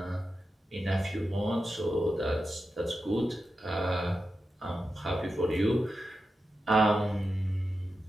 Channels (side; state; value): both; normal; correlation 0.90